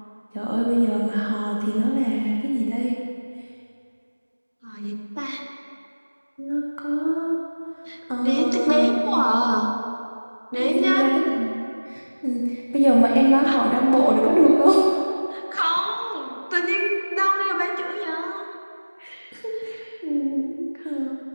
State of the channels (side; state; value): both; inverted; correlation -1.00